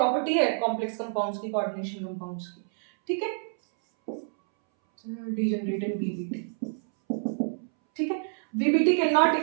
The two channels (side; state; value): left; silent; 60 dB below the other